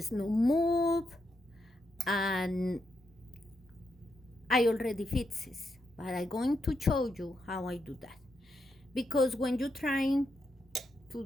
no move, and I already fixed this, but I'm going to show you how I do that. Because when you're trying to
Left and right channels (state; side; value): normal; both; correlation 0.82